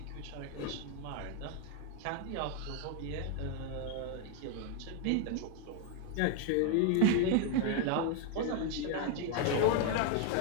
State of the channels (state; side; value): different; both; correlation 0.01